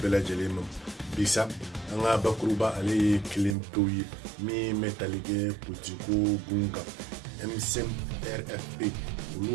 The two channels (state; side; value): drops out; left; at 3.6 s